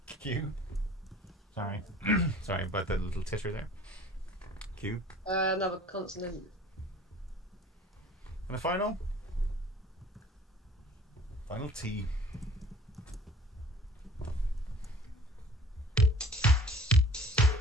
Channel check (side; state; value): both; normal; correlation 0.49